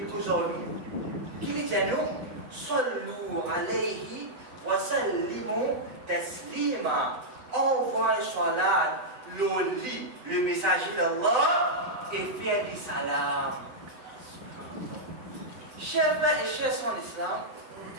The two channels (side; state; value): left; late; 8.0 ms